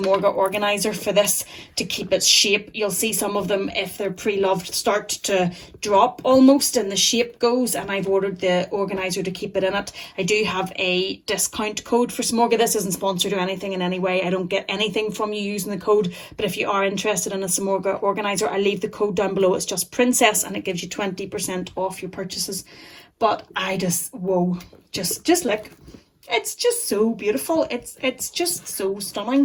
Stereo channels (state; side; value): identical; both; correlation 1.00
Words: organizer for this to keep its shape. You'll see some of them, if they're pre-loved, start to drop almost and the shape goes, and I've ordered the organizer to keep it in it. I do have a discount code for Samorga. This isn't sponsored or anything in any way. I don't get anything from you using the code, but if you are interested in a Samorga organizer, I'll leave the code down below. It's just Princess, and it gives you 20% off your purchases. But I just, whoa, just look. It's just so beautiful. It's just so